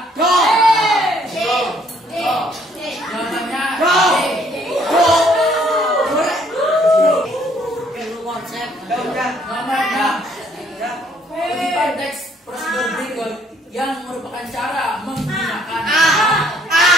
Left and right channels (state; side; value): normal; both; correlation 0.64